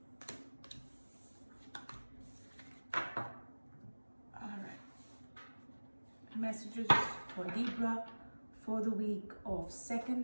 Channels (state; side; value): inverted; both; correlation -1.00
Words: All right. Messages for Libra for the week of